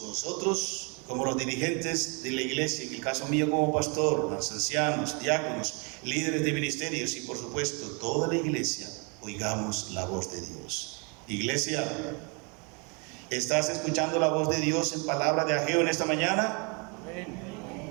nosotros como los dirigentes de la iglesia, en el caso mío como pastor, los ancianos, diáconos, líderes de ministerios y por supuesto toda la iglesia, oigamos la voz de Dios. Iglesia, ¿estás escuchando la voz de Dios en palabra de Ageo en esta mañana? Amén.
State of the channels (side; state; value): left; quieter; 32.8 dB